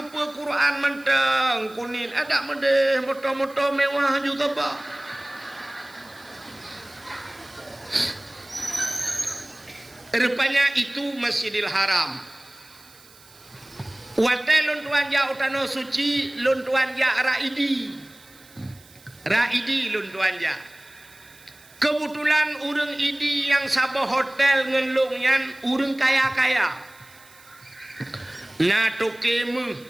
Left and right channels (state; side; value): noise; right; hiss, 25 dB below the sound